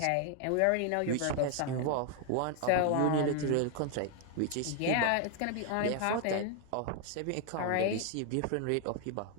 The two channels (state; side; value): different; both; correlation 0.00